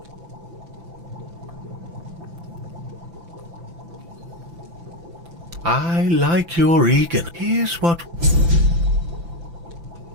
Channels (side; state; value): left; late; 5.9 ms